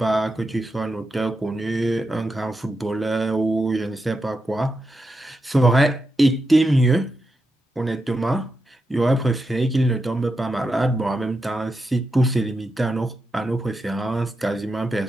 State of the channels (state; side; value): normal; both; correlation 0.87